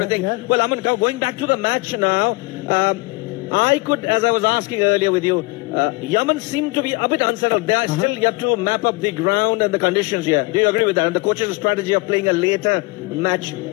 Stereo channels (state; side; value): quieter; right; 25.7 dB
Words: Well, Aman, going back to the match now, I could, as I was asking earlier with you, Yemen seemed to be a bit unsettled. They are still yet to map up the ground and the conditions here. Do you agree with that? And the coach's strategy of playing a later match,